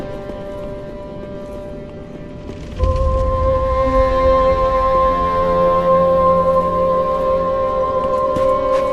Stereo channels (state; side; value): identical; both; correlation 1.00